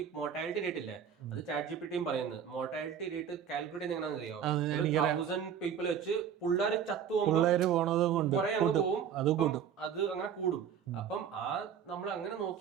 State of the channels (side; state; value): left; quieter; 8.1 dB